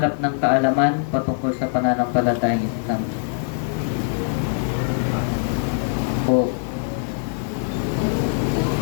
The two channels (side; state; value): right; silent; digital silence